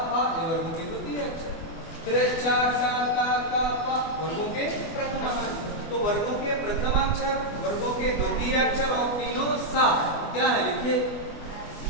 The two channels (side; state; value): right; late; 24 ms